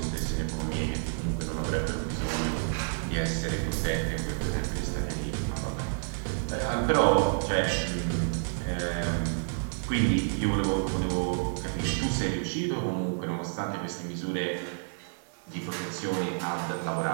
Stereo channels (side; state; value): left; silent; digital silence